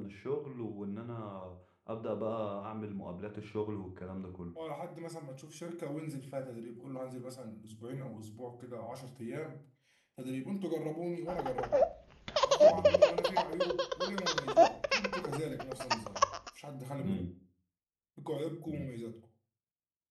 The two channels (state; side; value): identical; both; correlation 1.00